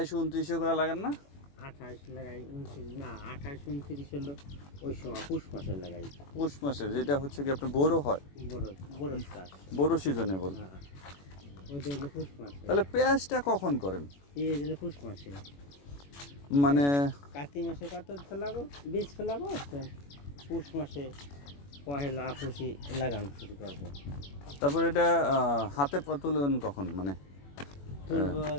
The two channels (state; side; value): late; right; 21 ms